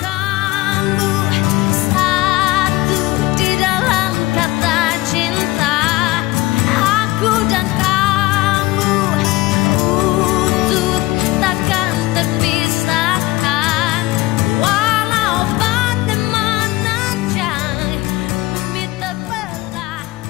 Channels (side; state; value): right; quieter; 19.2 dB